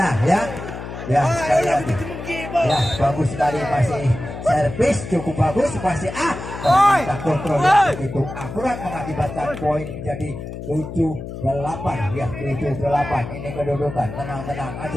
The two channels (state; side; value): noise; left; hum, 9 dB below the sound